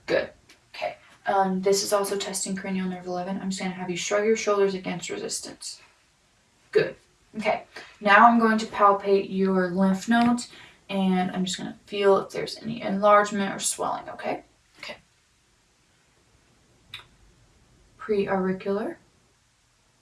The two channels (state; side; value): identical; both; correlation 1.00